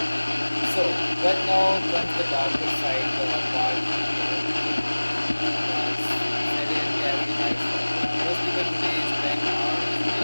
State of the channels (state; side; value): inverted; both; correlation -1.00